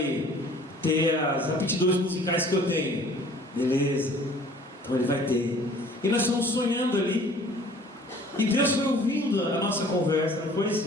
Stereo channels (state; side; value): normal; both; correlation 0.51